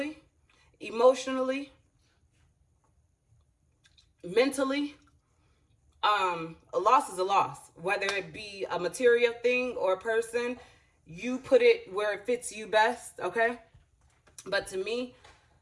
emotionally, mentally, a loss is a loss. Whether it be a material thing or a person, you put it where it fits you best, okay? But to me,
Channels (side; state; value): both; identical; correlation 1.00